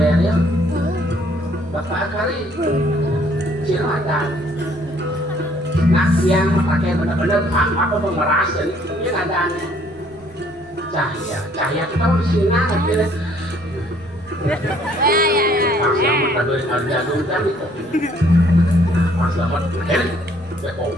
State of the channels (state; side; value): noise; right; rumble, 27 dB below the sound